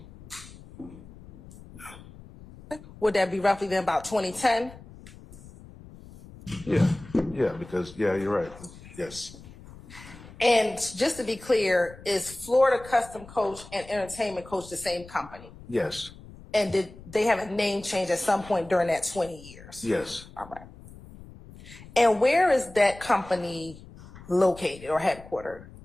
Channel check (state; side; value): noise; left; rumble, 19 dB below the sound